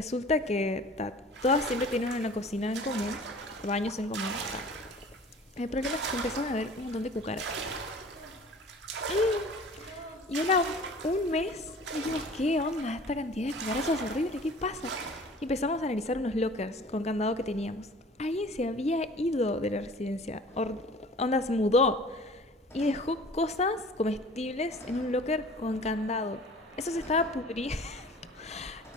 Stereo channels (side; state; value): both; normal; correlation 0.46